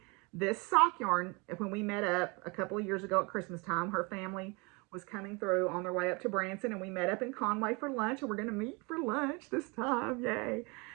this sock yarn when we met up a couple of years ago at Christmas time. Her family was coming through on their way up to Branson, and we met up in Conway for lunch, and we're going to meet for lunch this time. Yay.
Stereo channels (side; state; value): left; quieter; 28.6 dB